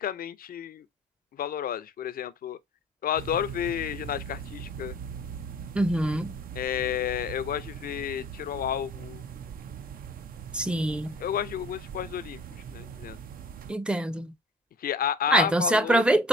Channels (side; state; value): both; normal; correlation 0.47